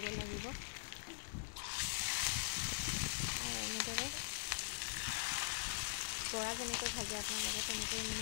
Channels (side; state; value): right; silent; digital silence